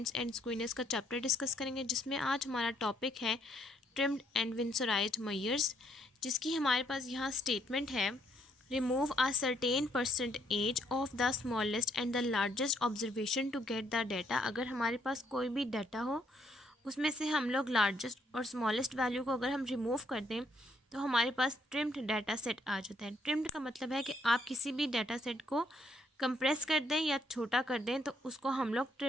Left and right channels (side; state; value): both; normal; correlation 0.70